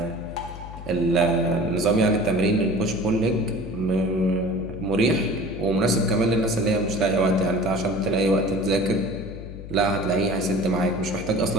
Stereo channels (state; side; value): noise; left; hum, 12 dB below the sound